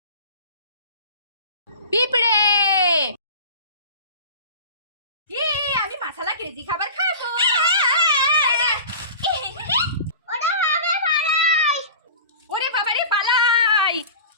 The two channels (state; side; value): inverted; both; correlation -0.37